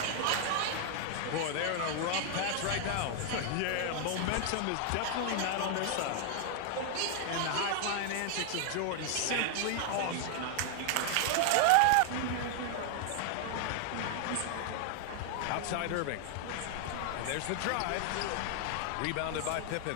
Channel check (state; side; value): different; both; correlation 0.00